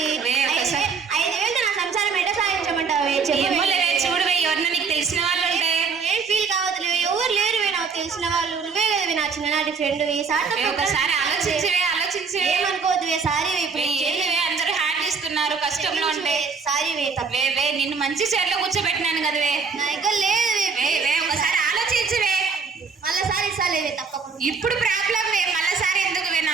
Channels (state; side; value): quieter; left; 5.3 dB